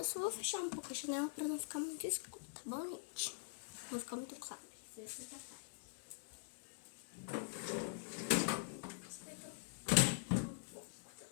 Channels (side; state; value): right; quieter; 34.7 dB